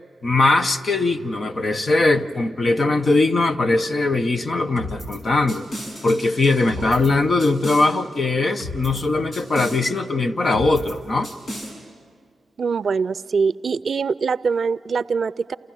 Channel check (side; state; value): both; normal; correlation 0.86